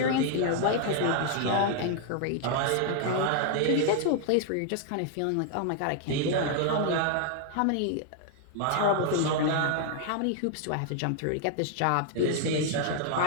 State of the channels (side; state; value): both; different; correlation 0.00